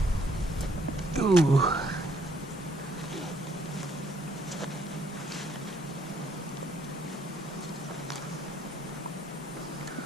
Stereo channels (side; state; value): both; normal; correlation 0.67